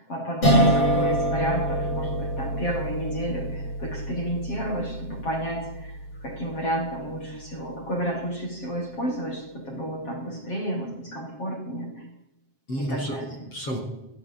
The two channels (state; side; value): late; right; 7.5 ms